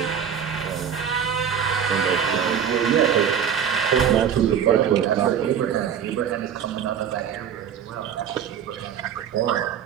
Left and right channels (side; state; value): left; quieter; 8.3 dB